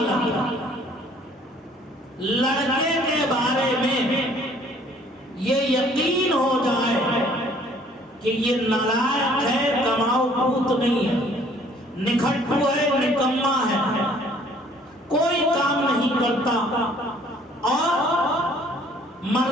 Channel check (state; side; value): normal; both; correlation 0.58